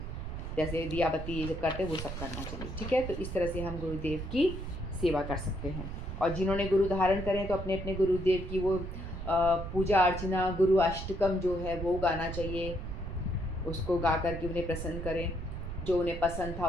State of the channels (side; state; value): right; noise; rumble, 6 dB below the sound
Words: जैसे दिया बत्ती ये जब करते हैं वो सब करना चाहिए। ठीक है, तो इस तरह से हम गुरुदेव की सेवा कर सकते हैं। और जिन्होंने गुरु धारण करें तो अपने अपने गुरुदेव की वो पूजा अर्चना, गुरु अष्टकम जो है वो गाना चाहिए, उसको गा कर के उन्हें प्रसन्न करें, जो उन्हें पसंद था